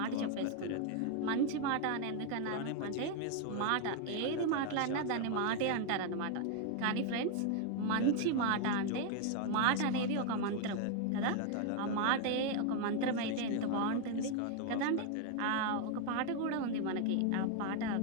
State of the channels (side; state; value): both; different; correlation 0.00